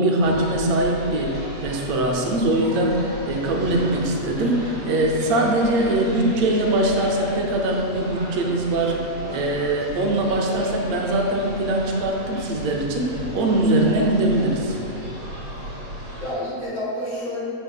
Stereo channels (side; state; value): left; late; 8.6 ms